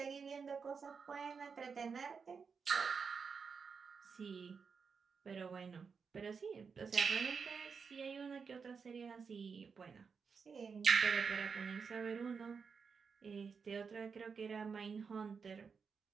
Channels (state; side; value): quieter; left; 5.6 dB